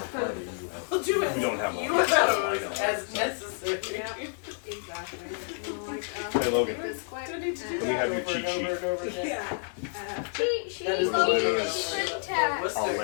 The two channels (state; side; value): silent; right; 59 dB below the other